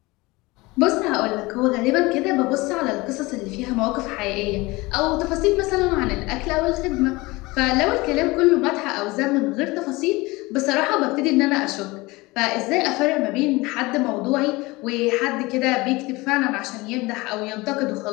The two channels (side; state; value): right; quieter; 22.4 dB